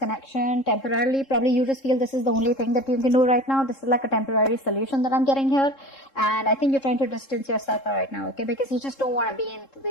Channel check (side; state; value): right; late; 3.7 ms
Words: temporarily. Probably you just feel this is the only thing that you can do right now. This is like a temporary solution that I'm getting here. And I think you're trying to distance yourself right now, okay? Because you just don't want to be in